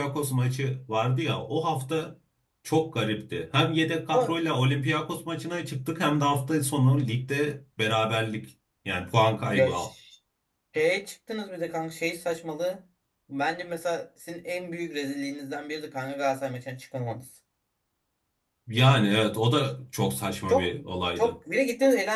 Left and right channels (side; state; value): both; identical; correlation 1.00